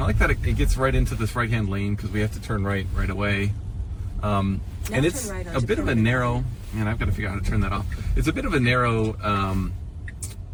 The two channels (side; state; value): both; identical; correlation 1.00